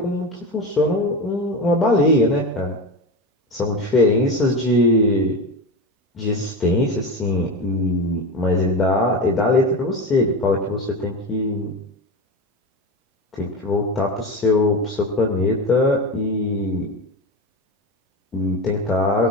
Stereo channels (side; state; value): both; normal; correlation 0.22